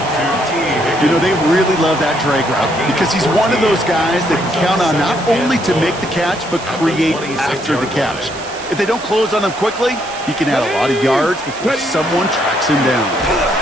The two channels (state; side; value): noise; right; hiss, 15 dB below the sound